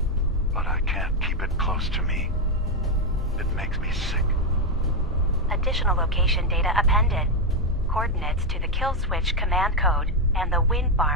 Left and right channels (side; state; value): both; normal; correlation 0.04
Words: But I can't keep it close to me. It makes me sick. Additional location data appended. Coordinates to the kill switch command code and the wind